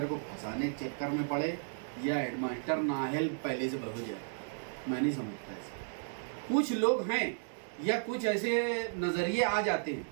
को फंसाने के चक्कर में पड़े या हेडमास्टर नाअहल पहले से बह जाए। मैं नहीं समझता ऐसा। कुछ लोग हैं या कुछ ऐसे नजरिए आ जाते हैं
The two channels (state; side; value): silent; left; digital silence